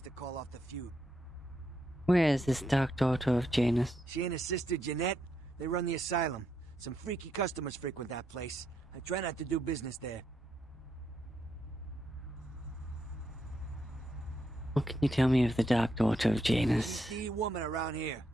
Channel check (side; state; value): both; normal; correlation 0.79